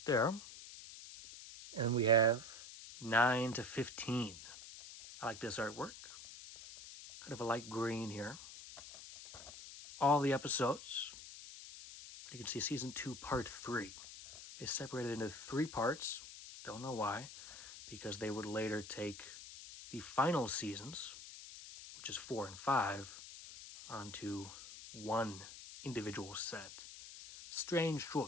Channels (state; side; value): noise; left; hiss, 13 dB below the sound